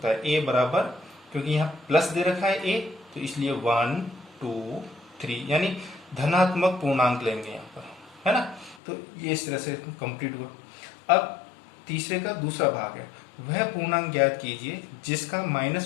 है, a बराबर, क्योंकि यहाँ प्लस दे रखा है a, तो इसलिए 1 2 3 यानी धनात्मक पूर्णांक लेंगे यहाँ पर, है ना। तो ये इस तरह से कंप्लीट हुआ। अब तीसरे का दूसरा भाग है, वह पूर्णांक ज्ञात कीजिए जिसका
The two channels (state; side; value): drops out; right; at 8.8 s